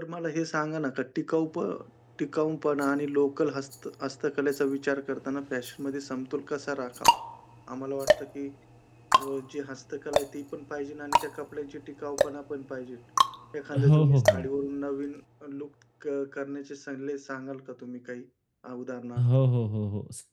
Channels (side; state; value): both; identical; correlation 1.00